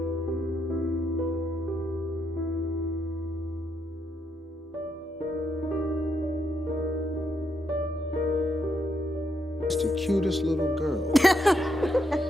Just the cutest little girl.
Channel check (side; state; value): both; normal; correlation 0.78